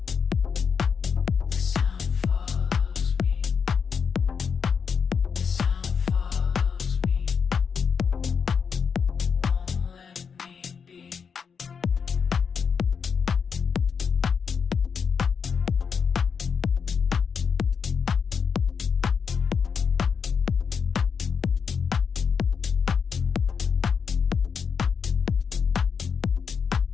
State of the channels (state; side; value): quieter; right; 6.3 dB